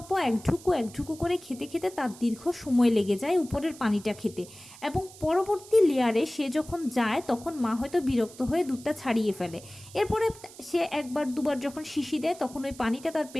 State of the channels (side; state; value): right; noise; hiss, 19 dB below the sound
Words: একঢুকু করে খেতে খেতে তার দীর্ঘ সময় লেগে যায় উপরের পানিটা খেতে, এবং পরবর্তী লেয়ারে সে যখন যায় তখন মা হয়তো বিরক্ত হয়ে দুধটা ছাড়িয়ে ফেলে। এরপরে সে একবার দুবার যখন শিশি দেয় তখন ওই পানিটা তার